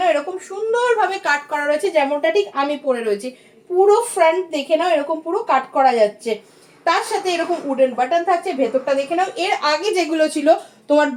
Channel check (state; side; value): identical; both; correlation 1.00